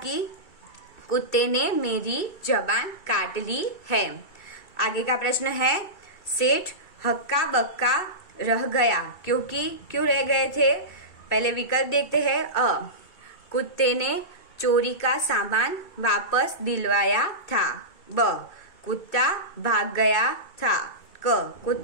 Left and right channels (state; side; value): late; right; 2.3 ms